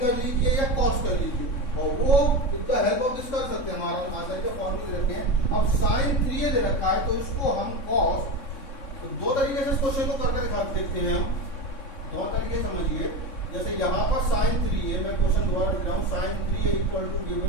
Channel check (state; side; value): late; right; 3.6 ms